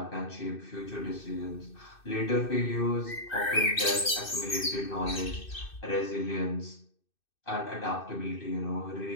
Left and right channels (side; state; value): right; late; 2.6 ms